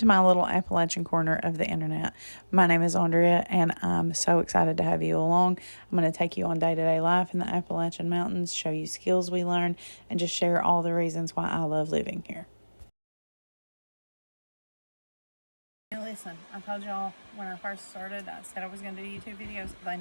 my little Appalachian corner of the internet. My name is Andrea, and I'm so excited to have you along. I'm going to take you on day-to-day life in the Appalachian Mountains, show you skills we learn, and just share all the reasons why I love living here. Now listen, I told y'all when I first started, I said I was going to do YouTube videos. They're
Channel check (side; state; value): both; inverted; correlation -1.00